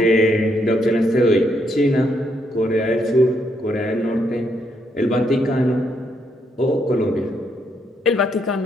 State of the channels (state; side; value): normal; both; correlation 0.75